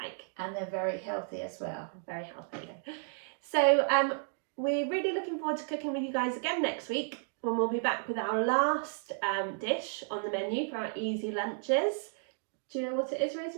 And they're very healthy as well. Very healthy. So we're really looking forward to cooking with you guys again next week, when we'll be back with our last dish on the menu for our easy lunches. Do you know what it is,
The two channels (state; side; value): silent; left; 56 dB below the other